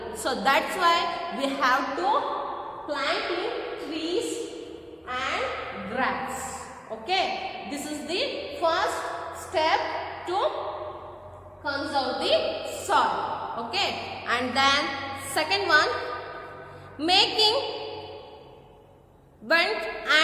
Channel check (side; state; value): both; identical; correlation 1.00